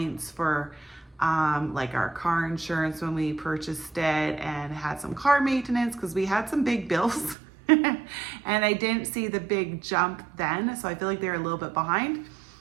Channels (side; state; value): left; drops out; at 7.4 s